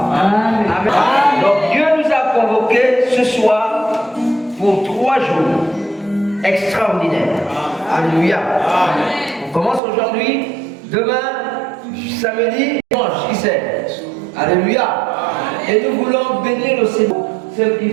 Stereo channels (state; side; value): drops out; left; at 9.8 s